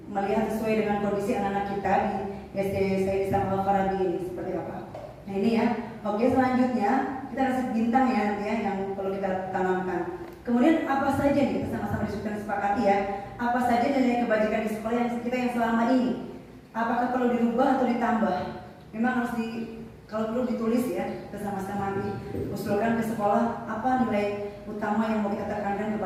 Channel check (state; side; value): identical; both; correlation 1.00